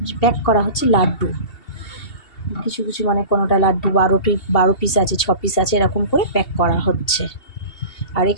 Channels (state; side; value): late; right; 2.7 ms